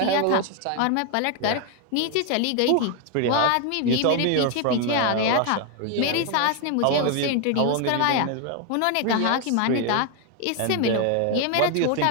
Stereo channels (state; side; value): different; both; correlation 0.01